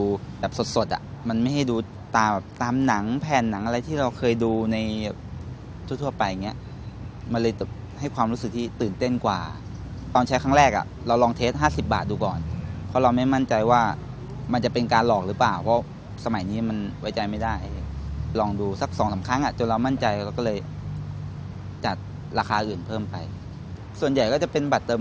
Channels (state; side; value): identical; both; correlation 1.00